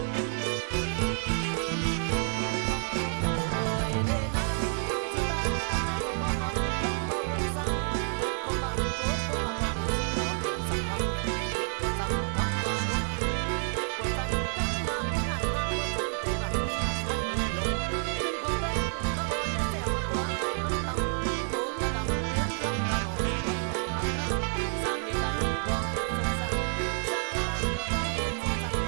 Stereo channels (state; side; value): silent; left; 57 dB below the other